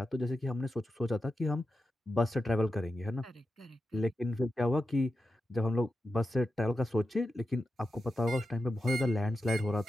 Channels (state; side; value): normal; both; correlation 0.90